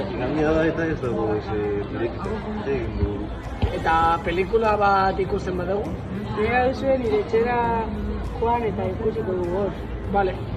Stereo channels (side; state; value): both; identical; correlation 1.00